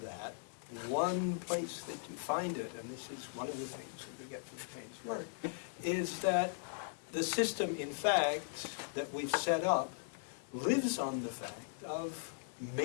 that, one place that you find it, and this is one of the things that we get from Payne's work, is that the system, in fact, that we've set up lives on the fact of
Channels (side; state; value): right; silent; digital silence